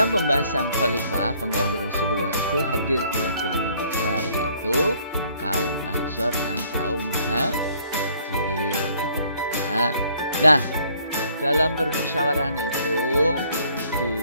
pembahasan khalifah pengganti Rasulullah itu hadir dua golongan besar, yaitu kaum Ansor dan kaum Muhajirin. Nah, dalam permusyawarah itu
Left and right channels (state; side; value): inverted; both; correlation -0.62